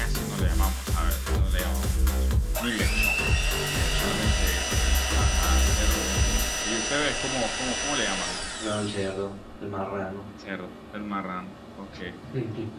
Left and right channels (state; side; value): identical; both; correlation 1.00